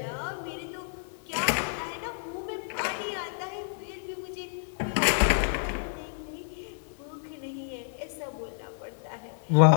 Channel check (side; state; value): right; silent; 58 dB below the other